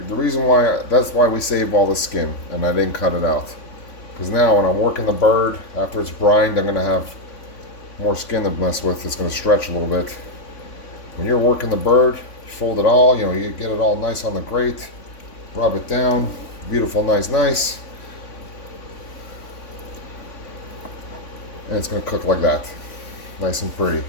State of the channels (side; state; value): right; late; 3.5 ms